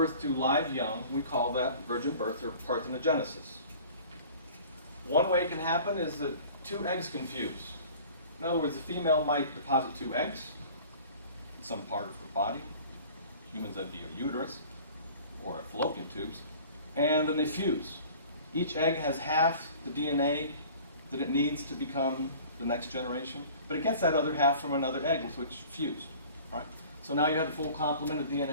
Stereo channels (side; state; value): both; inverted; correlation -0.45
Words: to live young, we call that virgin birth or parthenogenesis. One way it can happen is that two eggs can fuse. In other words, the female might deposit two eggs in some part of her body. Humans, that'd be a uterus or fallopian tubes, and then they fuse. Each egg has half the DNA that it needs to become the next generation, but it gets that other half from another egg with which it fused, right? So now you have the full complement of